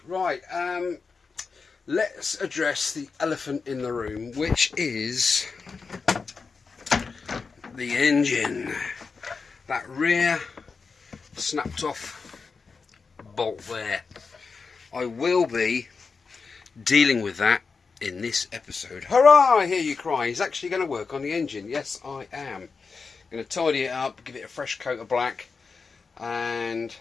Right, let's address the elephant in the room, which is the engine. That rear snapped off bolt there. I will be dealing with that in this episode. Hurrah! I hear you cry. He's actually going to work on the engine. Yes, I am. Going to tidy it up, give it a fresh coat of black, and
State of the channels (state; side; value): quieter; right; 4.9 dB